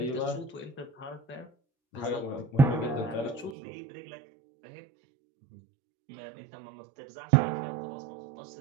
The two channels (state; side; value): drops out; left; at 3.6 s